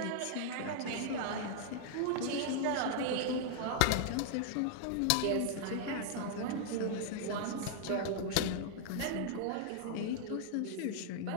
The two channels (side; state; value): both; different; correlation -0.01